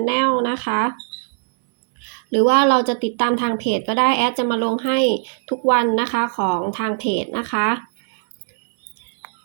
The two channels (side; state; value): left; silent; digital silence